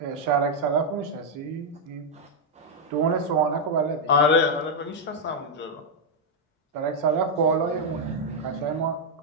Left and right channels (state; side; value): normal; both; correlation -0.01